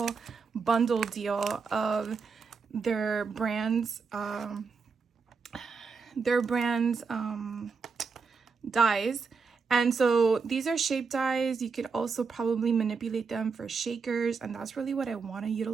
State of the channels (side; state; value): left; quieter; 5.1 dB